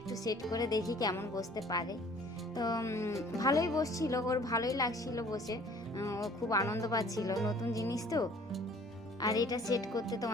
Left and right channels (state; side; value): noise; right; rumble, 30 dB below the sound